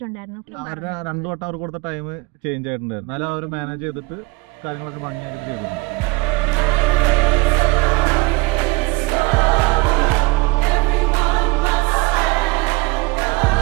2 വട്ടം അവർ കൊടുത്ത ടൈം ചേഞ്ച് ആയിട്ടുണ്ടായിരുന്നു, എന്നാലും അവർ മാനേജ് ചെയ്തിട്ട് കാര്യങ്ങളൊക്കെ ഭംഗിയായിട്ട് ചെയ്തിട്ടുണ്ട്.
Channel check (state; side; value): quieter; left; 23.9 dB